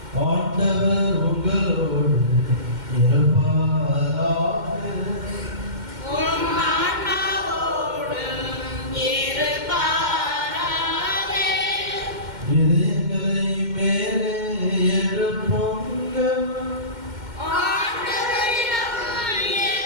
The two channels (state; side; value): late; left; 2.1 ms